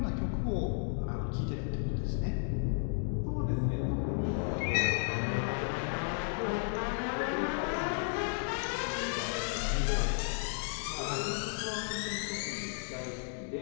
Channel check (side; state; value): right; silent; 55 dB below the other